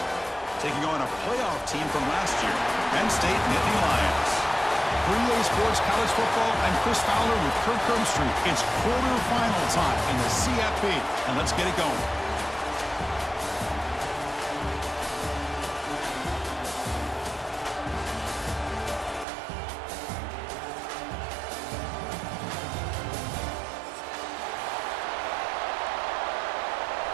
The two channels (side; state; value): left; drops out; at 19.2 s